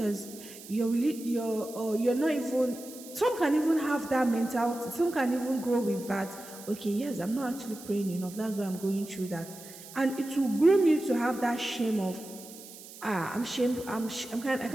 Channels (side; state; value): right; noise; hiss, 16 dB below the sound